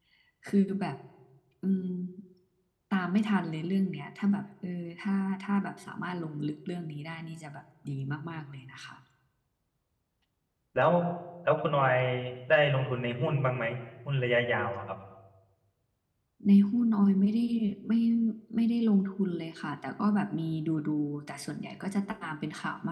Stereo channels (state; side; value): identical; both; correlation 1.00